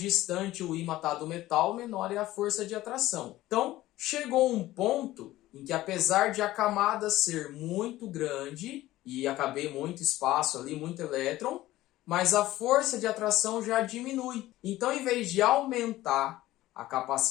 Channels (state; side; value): quieter; right; 16.1 dB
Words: o ímã está do metal, menor é a força de atração. Então, chegou um ponto em que, apesar de a camada ser muito grande e caber muito espaço ali, muito elétron, mas a força de atração já diminui. Então, em vez de aumentar a